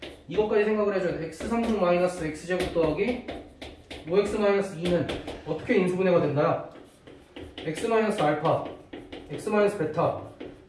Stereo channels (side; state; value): both; identical; correlation 1.00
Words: 이것까지 생각을 해줘야 돼. x3승 마이너스 x제곱 더하기 5x 마이너스 2는 어떻게 인수분해가 된다? x 마이너스 알파, x 마이너스 베타,